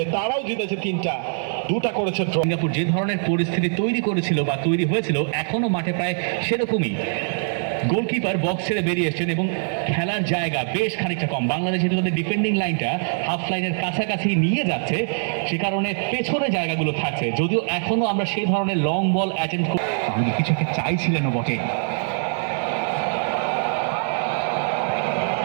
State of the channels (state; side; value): silent; left; digital silence